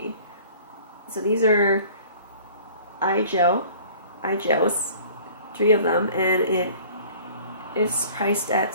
So these are eye gels, 3 of them, and it is priced at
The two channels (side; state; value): both; inverted; correlation -0.49